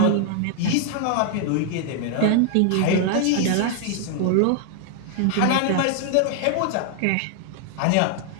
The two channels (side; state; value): both; different; correlation 0.00